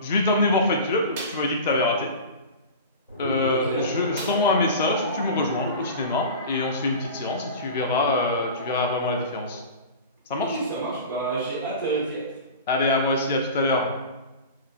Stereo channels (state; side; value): inverted; both; correlation -0.33